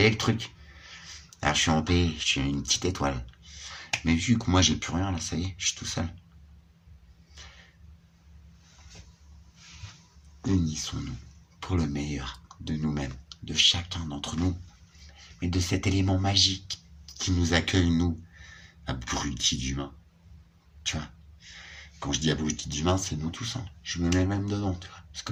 le truc? Alors je suis en paix, je suis une petite étoile. Mais vu que moi j'ai plus rien là, ça y est, je suis tout seul. Unissons-nous pour le meilleur de nous-mêmes, de chacun d'entre nous, mais de cet élément magique qui nous accueille, nous, abrutis d'humains. Tu vois, quand je dis abrutis d'humains, c'est nous tous. Hein. Je me mets même dedans, tu vois, parce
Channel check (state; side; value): identical; both; correlation 1.00